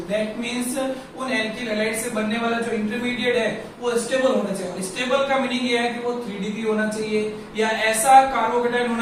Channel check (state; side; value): identical; both; correlation 1.00